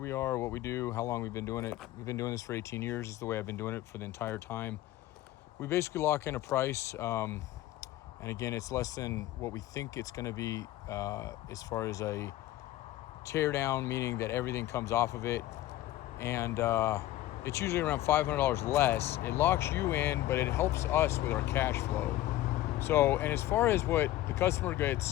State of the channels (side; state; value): right; quieter; 14.9 dB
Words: we are, what we do, how long we've been doing it, we've been doing this for 18 years. Is the way I've been doing it for the entire time. We basically lock in a price, and again, it's less than what we think it's going to be as far as a tear down, meaning that everything comes off of it, and it's usually around $500 less. It locks you in, but it helps us with our cash flow. So, and as far as what the customer